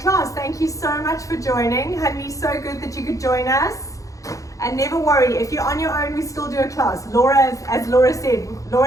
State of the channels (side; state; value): right; late; 0.16 ms